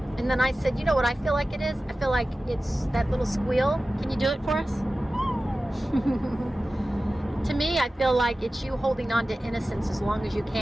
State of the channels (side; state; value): both; normal; correlation 0.95